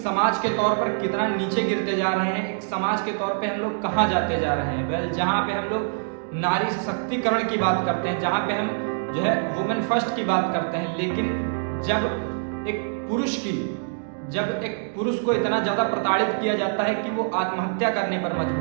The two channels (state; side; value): silent; left; digital silence